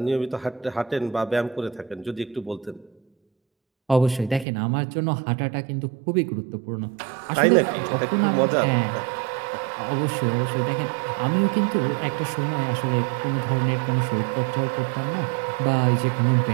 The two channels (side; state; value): left; drops out; at 4.5 s